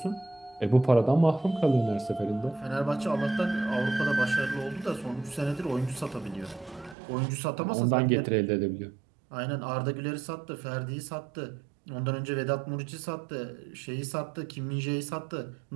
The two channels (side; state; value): left; drops out; at 7.0 s